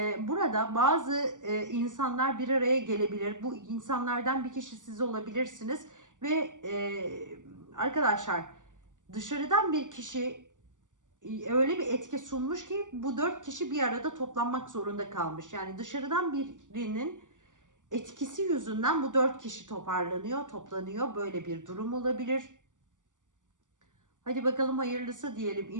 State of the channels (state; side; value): late; left; 0.87 ms